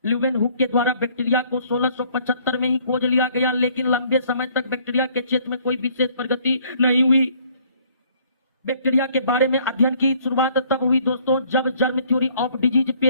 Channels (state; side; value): inverted; both; correlation -0.61